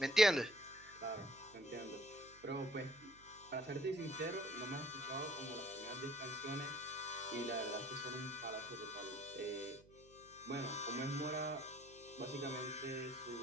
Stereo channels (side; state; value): right; noise; hum, 24 dB below the sound